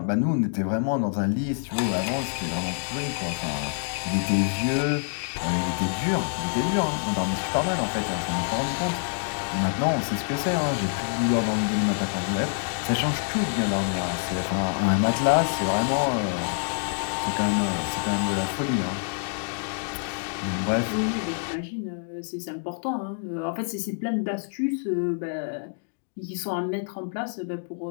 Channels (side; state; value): right; silent; digital silence